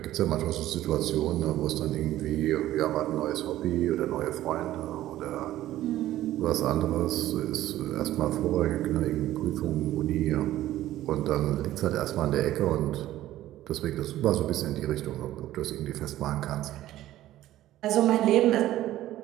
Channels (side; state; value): left; quieter; 14.2 dB